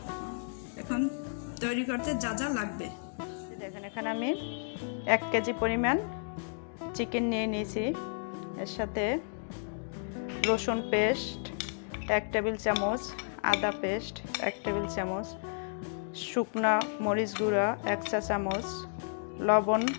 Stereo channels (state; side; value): silent; right; digital silence